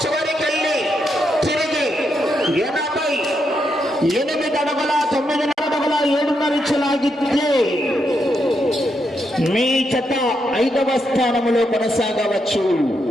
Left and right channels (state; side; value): normal; both; correlation 0.81